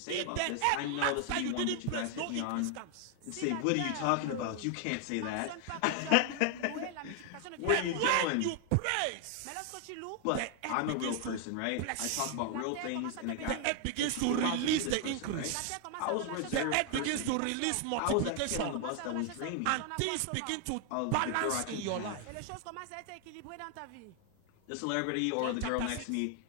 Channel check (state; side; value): different; both; correlation 0.00